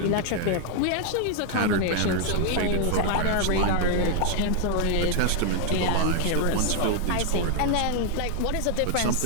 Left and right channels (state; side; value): different; both; correlation 0.00